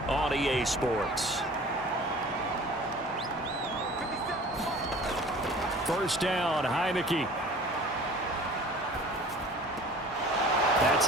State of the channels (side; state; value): both; normal; correlation 0.45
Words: on EA Sports. First down, Heineke. That's